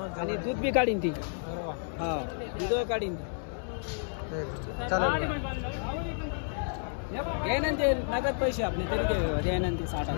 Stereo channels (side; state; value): right; silent; digital silence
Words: आणि दूध बी काढीन ती। दूध काढीन चालेल। ते नगद पैसे आपले तरी ते 60